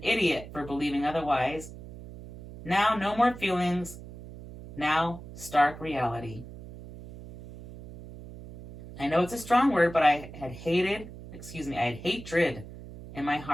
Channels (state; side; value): noise; right; hum, 14 dB below the sound